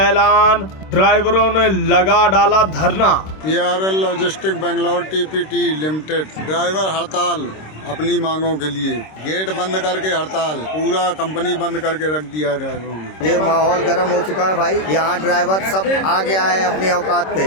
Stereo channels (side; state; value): right; late; 26 ms